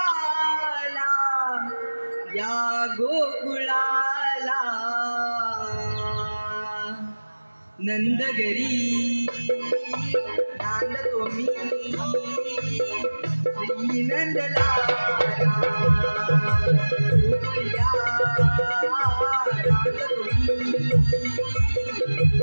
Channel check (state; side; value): inverted; both; correlation -1.00